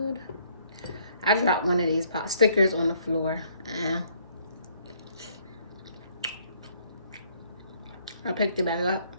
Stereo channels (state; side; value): inverted; both; correlation -0.65